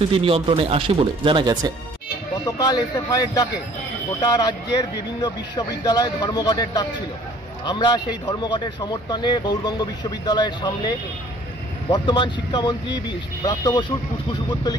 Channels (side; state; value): both; normal; correlation 0.55